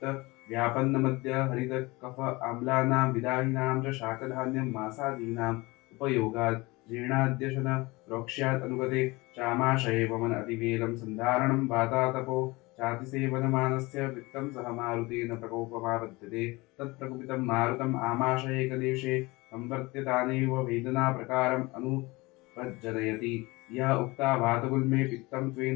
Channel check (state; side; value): quieter; right; 23.0 dB